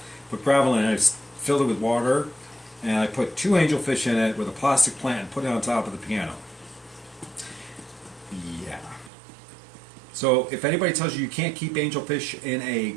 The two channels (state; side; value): drops out; left; at 9.1 s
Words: put gravel in it, I filled it with water, and I put 2 angelfish in it with a plastic plant and put it on top of the piano. Yeah. So if anybody tells you you can't keep angelfish in a